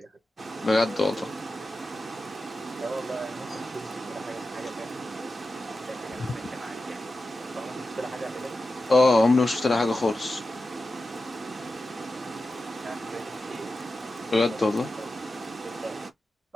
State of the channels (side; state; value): both; normal; correlation 0.92